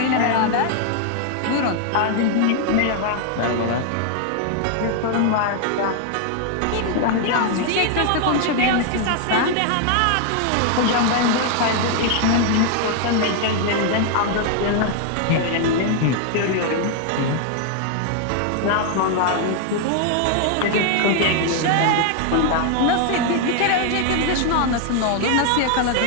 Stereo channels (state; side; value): different; both; correlation 0.00